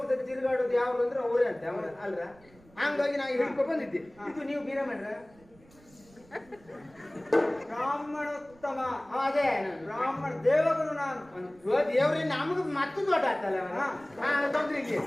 ತಿರುಗಾಡೋದು ಯಾವ್ದು ಅಂದ್ರೆ ಅವರೇ ಅಂತ ಅಲ್ರ. ಹಂಗಾಗಿ ನಾವು ಹಿಡ್ಕೊ ಬಂದಿದ್ದೆ. ಇದು ನೀವು ಬ್ರಾಹ್ಮಣರ ಬ್ರಾಹ್ಮಣೋತ್ತಮ. ಅದೇ ಬ್ರಾಹ್ಮಣ ದೇವಗುರು ನಾನು. ದೇವ್ರಿ ನಮಗ್ ಮತ್ತೆ ದೊಡ್ಡ ಆಗ್ತಲ್ಲ ತೊಂದ್ರೆ ಇಲ್ಲಿ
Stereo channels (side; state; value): right; noise; rumble, 27 dB below the sound